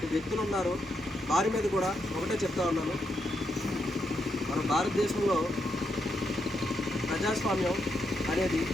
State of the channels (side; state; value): both; normal; correlation 0.81